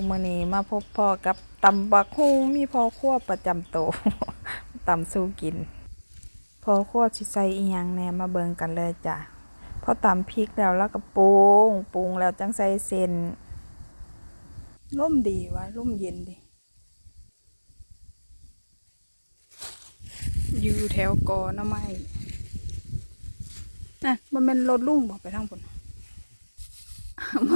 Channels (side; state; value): both; inverted; correlation -1.00